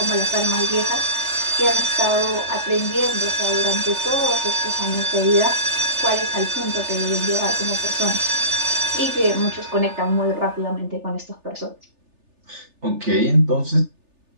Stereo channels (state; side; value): late; left; 3.4 ms